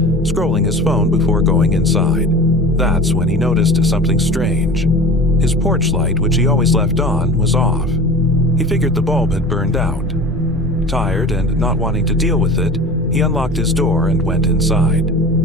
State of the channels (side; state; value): both; normal; correlation 0.37